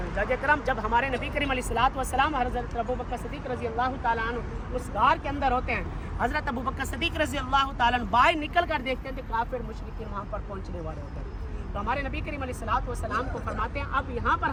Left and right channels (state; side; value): identical; both; correlation 1.00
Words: کرام جب ہمارے نبی کریم علیہ الصلوۃ والسلام حضرت ابوبکر صدیق رضی اللہ تعالیٰ عنہ اس غار کے اندر ہوتے ہیں، حضرت ابوبکر صدیق رضی اللہ تعالیٰ عنہ باہر نکل کر دیکھتے ہیں کہ کافر مشرکین وہاں پر پہنچنے والے ہوتے ہیں۔ تو ہمارے نبی کریم علیہ الصلوۃ والسلام کو فرماتے ہیں اب یہاں پر